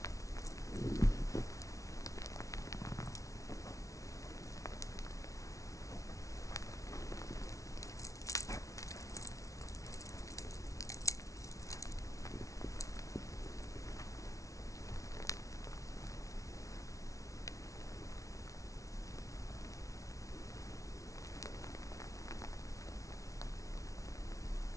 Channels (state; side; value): late; right; 0.16 ms